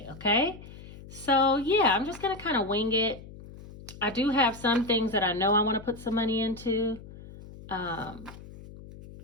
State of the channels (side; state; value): left; noise; hum, 17 dB below the sound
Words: okay? So yeah, I'm just gonna kind of wing it. I do have some things that I know I wanna put some money into.